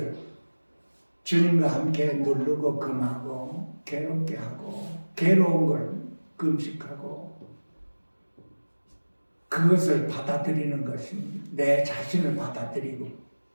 주님과 함께 누르고 금하고 괴롭게 하고 괴로운 걸 금식하고 그것을 받아들이는 것입니다. 내 자신을 받아들이고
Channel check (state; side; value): inverted; both; correlation -1.00